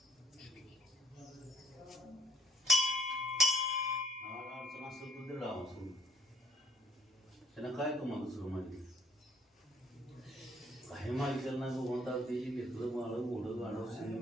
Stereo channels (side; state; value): both; normal; correlation 0.65